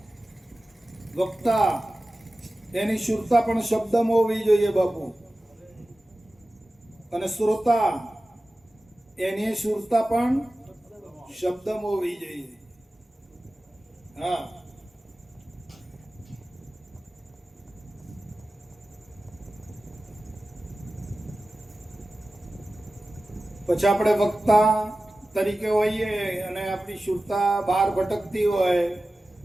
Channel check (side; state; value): both; normal; correlation 0.95